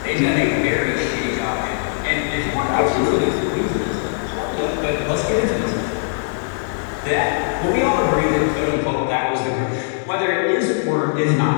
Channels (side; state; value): right; silent; 59 dB below the other